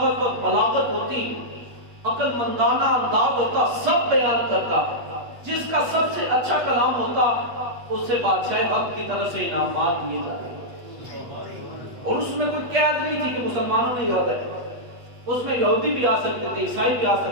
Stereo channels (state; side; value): late; left; 8.3 ms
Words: اور بلاغت ہوتی، عقل مندانہ انداز ہوتا، سب بیان کرتا. جس کا سب سے اچھا کلام ہوتا اسے بادشاہ حق کی طرف سے انعامات دیے جاتے. اور اس میں کوئی قید نہیں تھی کہ مسلمانوں نے یاد ہے، اس میں یہودی بھی آ سکتے تھے، عیسائی بھی آ